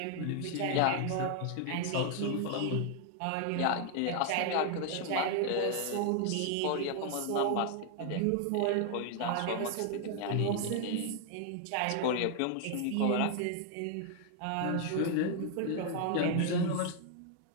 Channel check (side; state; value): both; different; correlation 0.00